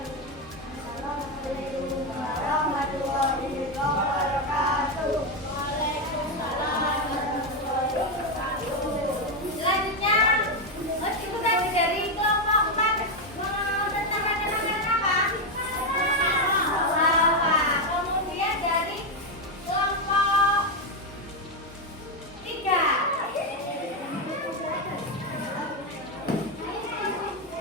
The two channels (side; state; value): both; normal; correlation 0.07